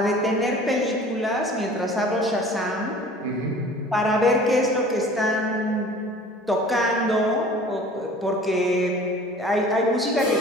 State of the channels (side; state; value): both; normal; correlation 0.46